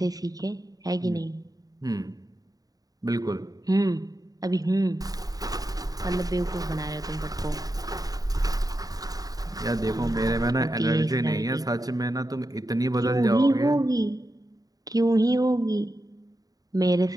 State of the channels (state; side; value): late; left; 0.18 ms